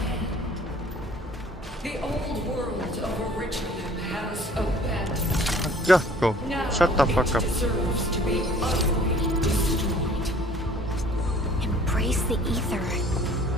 The old world of Originum has abandoned. Ya, go. Now Shut the fuck it up. deserves to be utterly destroyed. Embrace the ether.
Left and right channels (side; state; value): both; normal; correlation 0.53